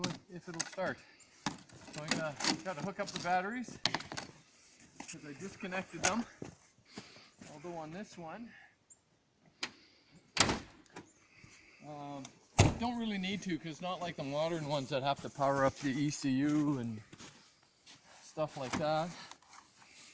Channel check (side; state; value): both; identical; correlation 1.00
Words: it'll start. So I'm gonna try to hook up the batteries because I disconnected them. Although on this one, don't really need to, because not like the modern ones that have to power up the ECU and stuff like that.